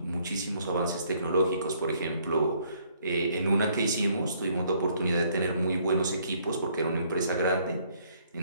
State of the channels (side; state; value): both; inverted; correlation -0.66